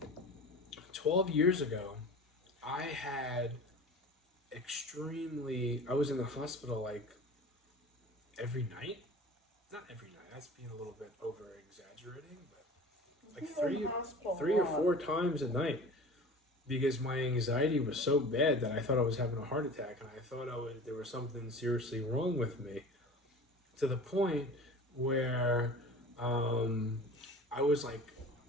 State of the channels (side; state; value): both; normal; correlation 0.39